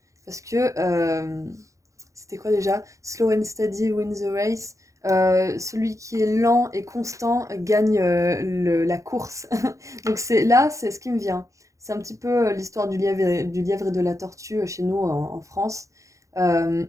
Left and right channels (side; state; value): left; late; 0.15 ms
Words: Parce que, c'était quoi déjà? Slow and steady wins the race. Celui qui est lent et constant gagne la course. Donc c'est ce qui me vient. C'est un petit peu l'histoire du lièvre et de la tortue chez nous en France. Euh,